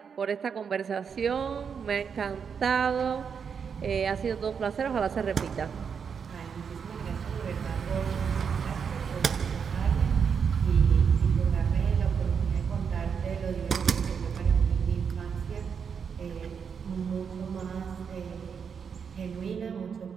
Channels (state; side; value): quieter; left; 6.6 dB